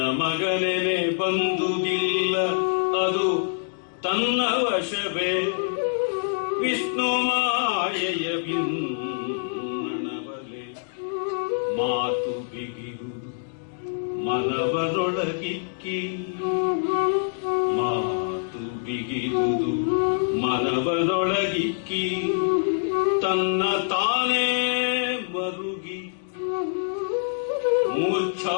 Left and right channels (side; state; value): right; silent; digital silence